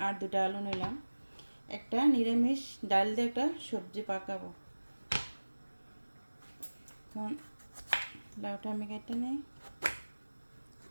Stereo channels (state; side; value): inverted; both; correlation -1.00